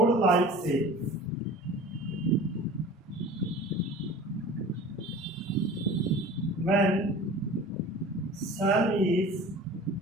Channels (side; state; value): both; normal; correlation 0.40